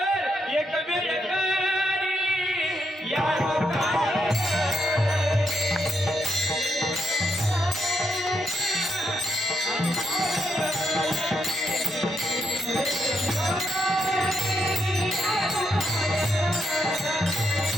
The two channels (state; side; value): normal; both; correlation 0.79